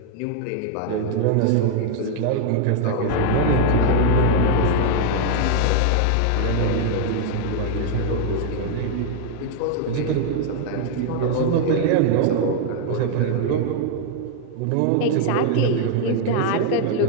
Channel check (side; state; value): both; different; correlation 0.00